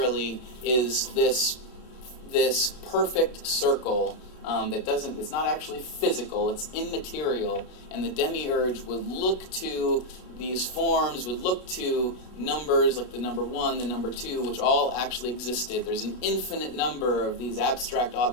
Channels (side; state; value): right; late; 33 ms